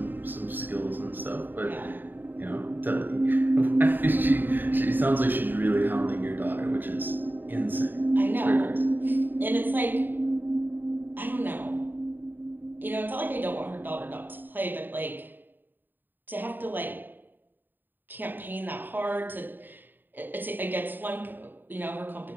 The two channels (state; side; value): late; left; 0.092 ms